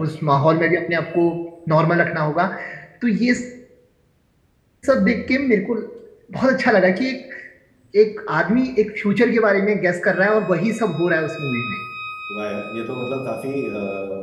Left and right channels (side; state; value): both; identical; correlation 1.00